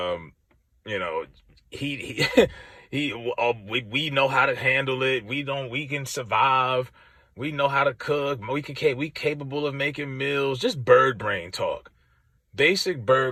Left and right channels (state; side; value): identical; both; correlation 1.00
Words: you know, he we know how to handle it. We can survive. We know how to cook. We capable of making meals. Just bird brain talk. Basic